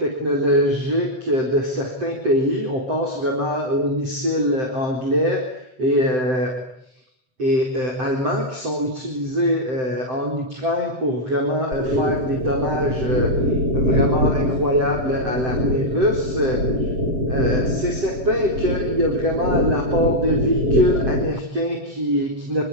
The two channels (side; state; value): left; late; 7.6 ms